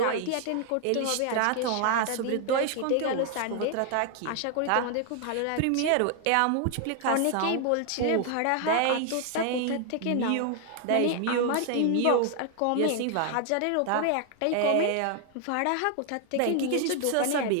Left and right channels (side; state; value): both; different; correlation 0.00